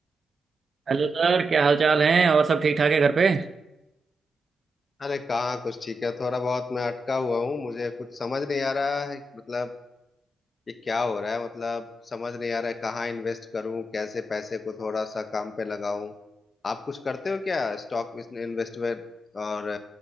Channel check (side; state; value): both; normal; correlation 0.86